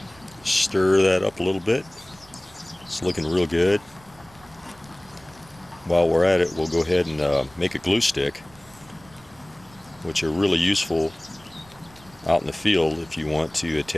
Stir that up a little bit. It's looking real good. While we're at it, we'll go ahead and make a glue stick. which are really useful out in the field if you want to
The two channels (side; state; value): right; noise; rumble, 26 dB below the sound